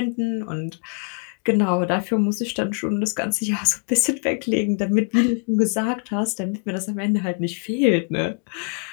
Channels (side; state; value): right; quieter; 39.5 dB